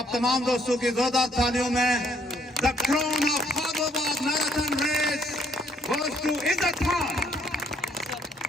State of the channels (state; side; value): normal; both; correlation 0.66